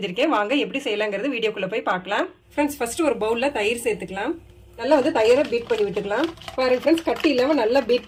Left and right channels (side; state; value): both; identical; correlation 1.00